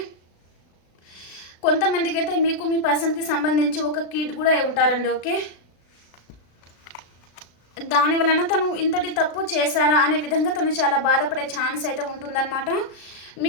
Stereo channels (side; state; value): right; late; 36 ms